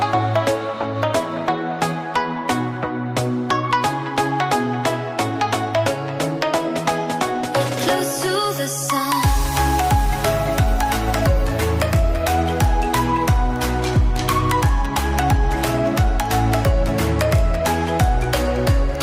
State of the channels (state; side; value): identical; both; correlation 1.00